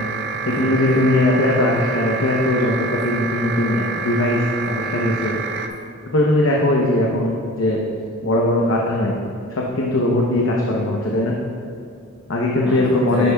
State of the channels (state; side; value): normal; both; correlation 0.40